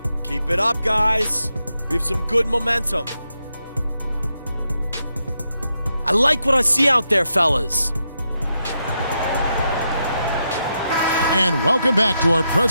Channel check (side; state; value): both; inverted; correlation -0.84